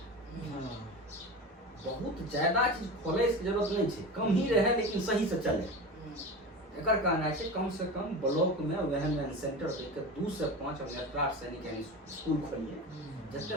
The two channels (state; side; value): normal; both; correlation 0.28